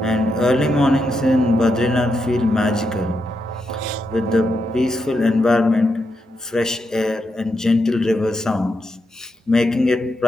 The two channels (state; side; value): normal; both; correlation 0.84